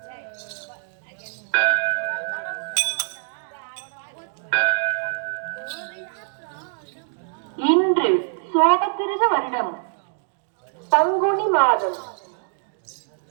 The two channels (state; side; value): silent; left; digital silence